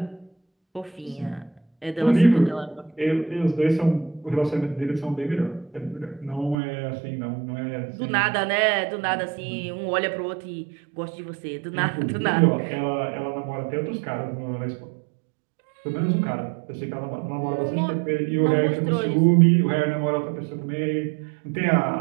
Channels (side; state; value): left; drops out; at 6.6 s